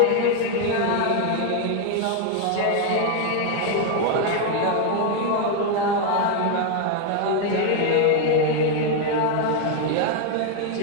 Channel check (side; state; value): both; different; correlation 0.01